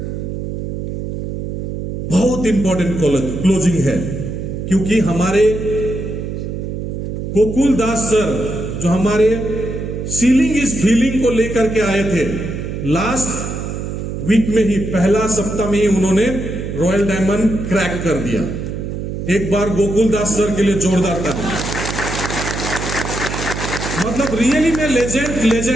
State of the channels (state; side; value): noise; right; hum, 5 dB below the sound